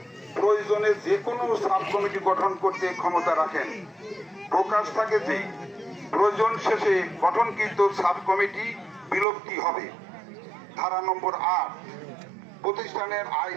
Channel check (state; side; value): drops out; left; at 9.2 s